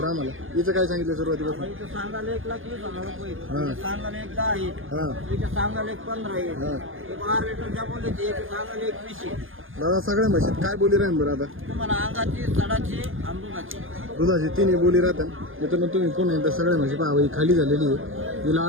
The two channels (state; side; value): late; left; 0.59 ms